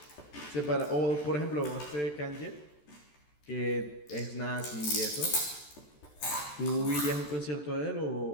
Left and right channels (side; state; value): right; late; 14 ms